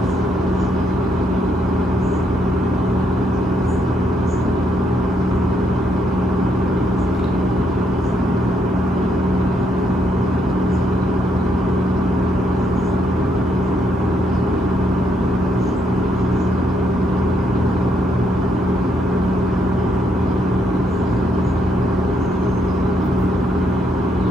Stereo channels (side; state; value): both; normal; correlation 0.75